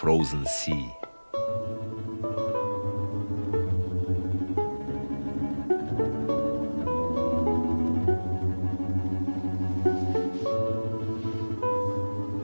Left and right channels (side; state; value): both; inverted; correlation -1.00